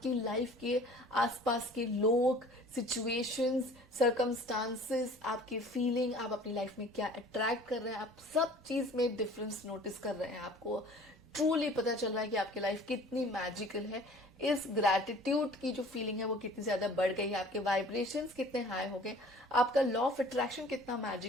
लाइफ के आसपास के लोग, सिचुएशंस, सर्कमस्टांसेस, आपके फीलिंग, आप अपनी लाइफ में क्या अट्रैक्ट कर रहे हैं, आप सब चीज में डिफरेंस नोटिस कर रहे हैं। आपको ट्रूली पता चल रहा है कि आपकी लाइफ कितनी मैजिकल है। इस ग्रैटिट्यूड की जो फीलिंग है वो कितनी ज्यादा बढ़ गई है, आपके वाइब्रेशंस कितने हाई हो गए, आपका लॉ ऑफ अट्रैक्शन कितना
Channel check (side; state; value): both; normal; correlation 0.48